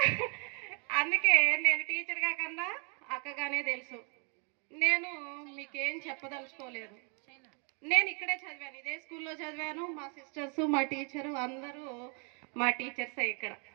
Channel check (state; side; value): quieter; left; 37.3 dB